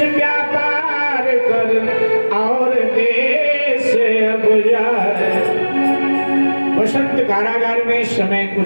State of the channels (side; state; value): both; inverted; correlation -1.00